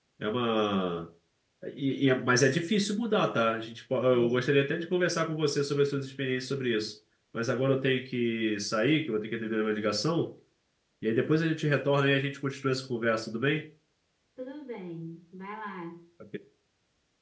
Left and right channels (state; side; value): identical; both; correlation 1.00